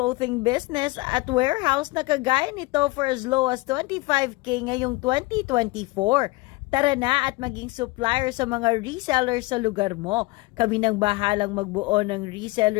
business at warehouse na kagaya nito for as low as 25K ngayong 2024? Tara na at maging supplier sa mga resellers sa lugar mo. Kami nang bahalang magbuo ng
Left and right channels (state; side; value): quieter; right; 22.4 dB